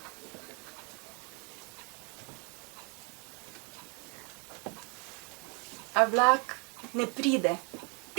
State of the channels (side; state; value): left; quieter; 34.1 dB